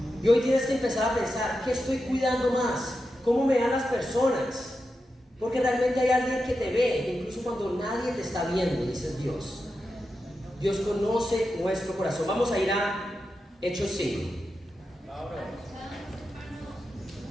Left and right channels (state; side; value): normal; both; correlation 0.89